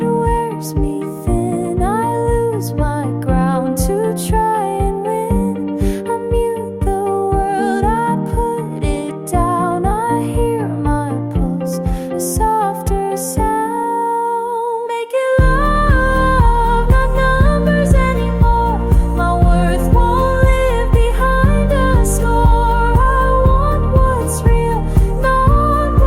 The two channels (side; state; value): both; identical; correlation 1.00